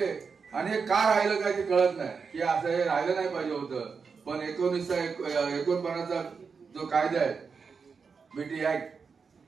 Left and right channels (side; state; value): left; quieter; 5.4 dB